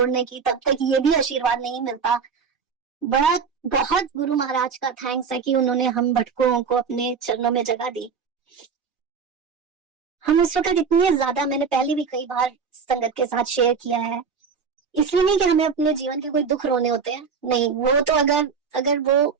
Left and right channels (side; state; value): left; quieter; 5.8 dB